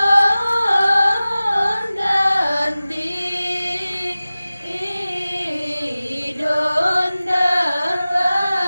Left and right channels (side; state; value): both; inverted; correlation -0.97